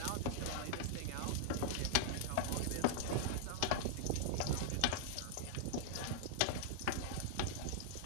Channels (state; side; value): different; both; correlation -0.01